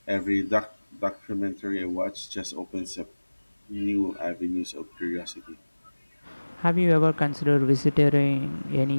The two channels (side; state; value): both; inverted; correlation -1.00